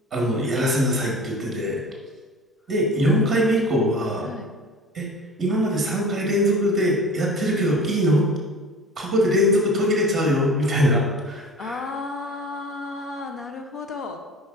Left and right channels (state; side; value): normal; both; correlation 0.38